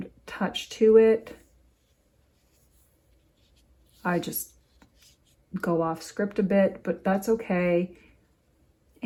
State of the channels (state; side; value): identical; both; correlation 1.00